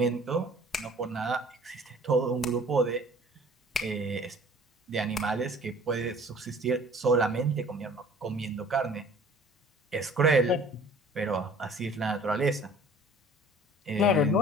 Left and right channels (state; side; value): normal; both; correlation 0.50